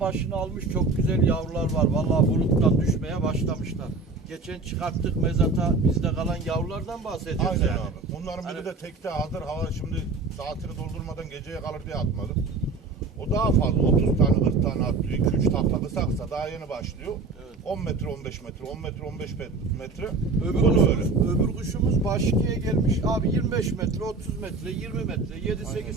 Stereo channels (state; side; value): quieter; left; 3.9 dB